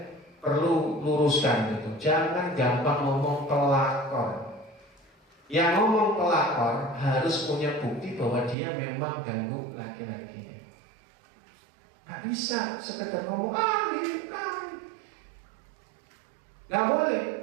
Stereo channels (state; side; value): drops out; left; at 8.6 s